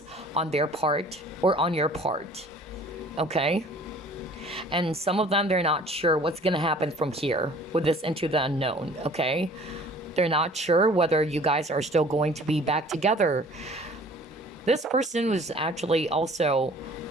on their part or on your part. Okay? And some of them, they're not sure what's going to happen from here with this into the unknown, okay? They're not sure whether you guys are still going to be back together. This person was actually also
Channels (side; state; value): both; normal; correlation 0.50